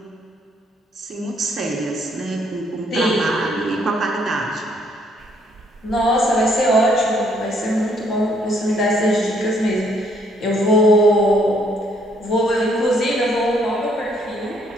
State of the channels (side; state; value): both; normal; correlation 0.67